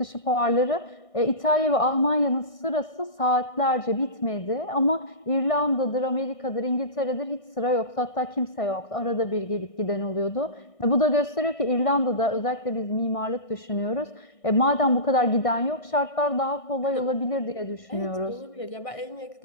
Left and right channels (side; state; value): right; late; 1.6 ms